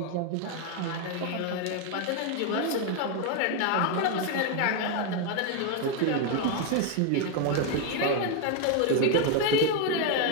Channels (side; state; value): both; different; correlation 0.01